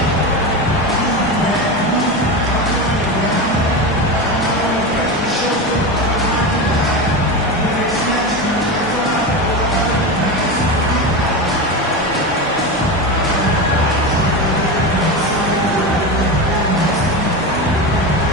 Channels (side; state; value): both; normal; correlation 0.20